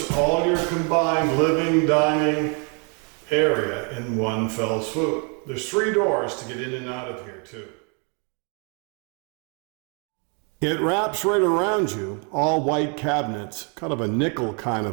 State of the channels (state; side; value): quieter; left; 36.3 dB